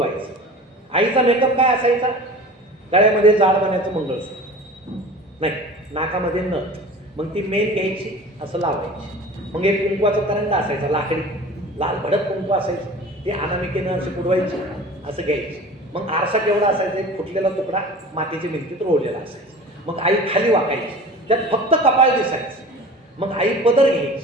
आईचा मेकअप काय असायचा? गळ्यामध्ये जाड बनायचं मंगळसूत्र, नाही नाकामध्ये नथ, मग ती मेन घ्यायची असं लावायची, मग एक कुंकवाचा करंडा असायचा लाकडी, लाल भडक कुंकू असायचं, ते अनामिकेनं असे बुडवायचे, असं घ्यायचे. मग आरसा केवढा असायचा? एक फुटलेला तुकडा मातीच्या भिंतीत रोवलेला असायचा. मग आई खाली वाकायची, त्यात फक्त कपाळ दिसायचं. मग आई पदर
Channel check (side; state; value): both; normal; correlation 0.39